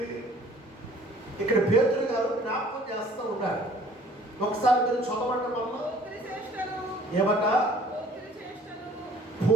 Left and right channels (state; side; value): normal; both; correlation 0.54